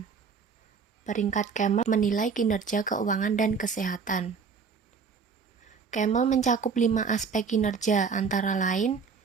Peringkat Camel menilai kinerja keuangan dan kesehatan. Camel mencakup 5 aspek kinerja antara lain,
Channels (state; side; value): quieter; left; 5.6 dB